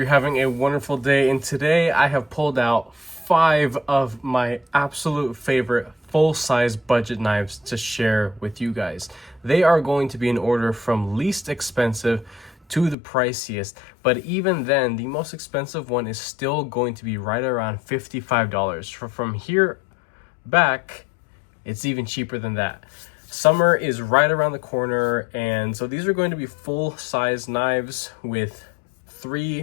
having a wonderful day, and today I have pulled out 5 of my absolute favorite full-size budget knives to share with you guys. They are going to be in order from least expensive to the priciest, but even then, the most expensive one is still going to be right around $55. From here back, it's even cheaper than that. Summer is right around the corner, and so these are going to be full-size knives with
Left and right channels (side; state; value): right; drops out; at 13.0 s